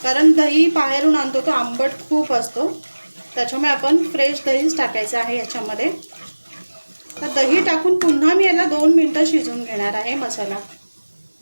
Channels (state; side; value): inverted; both; correlation -1.00